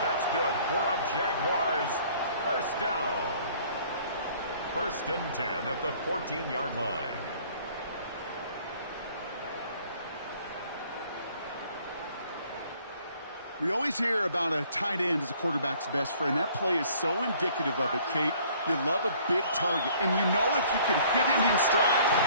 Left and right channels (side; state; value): both; inverted; correlation -0.57